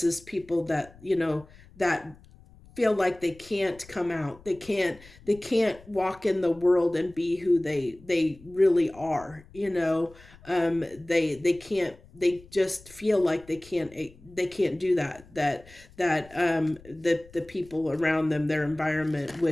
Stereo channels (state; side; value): noise; left; rumble, 23 dB below the sound